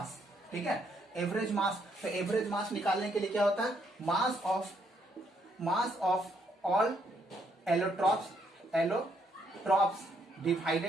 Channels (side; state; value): both; normal; correlation 0.72